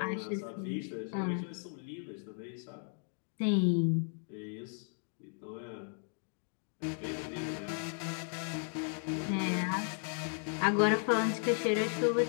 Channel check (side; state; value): right; silent; 54 dB below the other